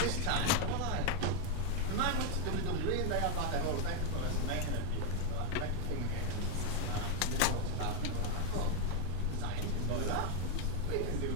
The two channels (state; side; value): different; both; correlation 0.01